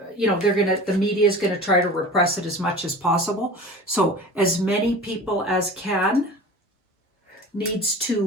the media is going to try to repress it as much as possible. So as many people as can needs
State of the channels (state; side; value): normal; both; correlation 0.37